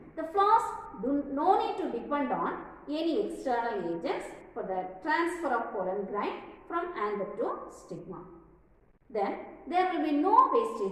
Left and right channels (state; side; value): identical; both; correlation 1.00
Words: the flowers do no need to depend on any external agents for the transfer of pollen grain from anther to stigma. Then, there will be no